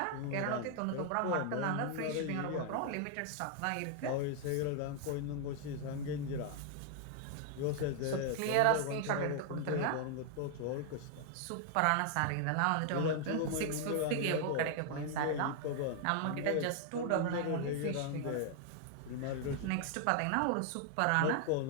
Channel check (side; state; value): both; different; correlation 0.00